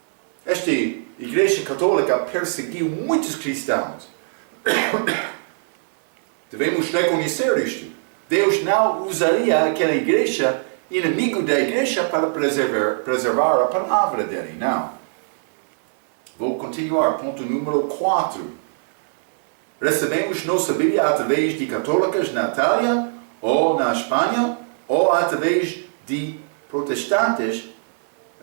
Esta igreja católica perseguiu muitos cristãos. Devemos reconhecer isto. Deus não usaria aquela igreja, inimigo da igreja, para preservar a palavra dele. Não. Vou continuar. Ponto número 4. Recebemos nossa Bíblia através de católicas na Itália, ou na Espanha, ou através de protestantes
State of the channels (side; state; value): left; silent; 60 dB below the other